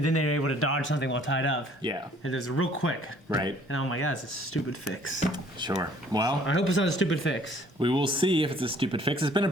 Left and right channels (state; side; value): normal; both; correlation 0.58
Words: then they were able to dodge something while tied up. Yeah. And it was real quick. Right. And oh my God, it's a stupid fix. Sure. Well, I hope it's not a stupid fix. we will see if it's a stupid fix. It's been a